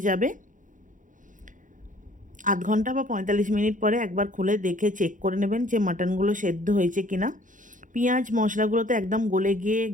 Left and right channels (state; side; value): late; left; 0.38 ms